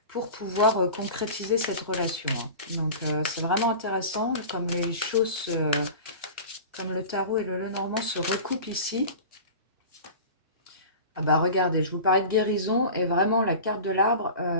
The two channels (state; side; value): inverted; both; correlation -0.35